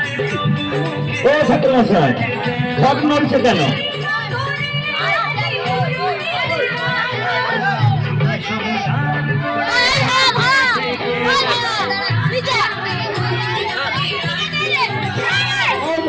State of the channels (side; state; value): both; identical; correlation 1.00